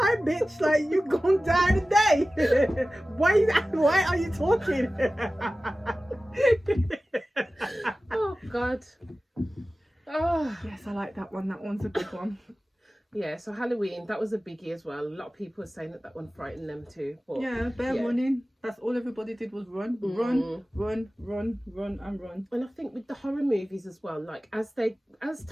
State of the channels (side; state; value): both; normal; correlation 0.96